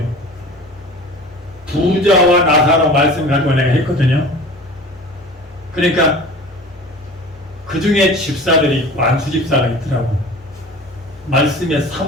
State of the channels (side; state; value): both; normal; correlation 0.40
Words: 부자와 나사로 말씀 가지고 내가 했거든요. 그러니까 그 중에 집사들이 있고 안수 집사가 있더라고. 말씀에